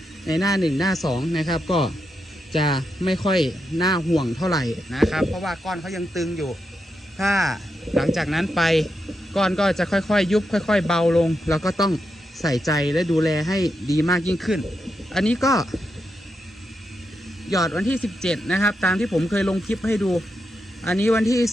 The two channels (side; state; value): both; normal; correlation 0.85